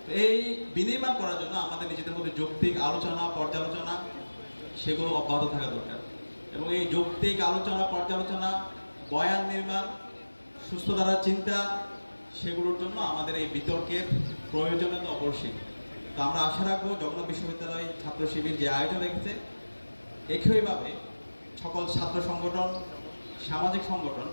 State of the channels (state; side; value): inverted; both; correlation -1.00